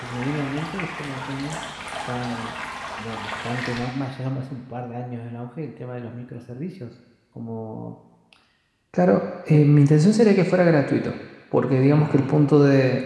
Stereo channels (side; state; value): both; identical; correlation 1.00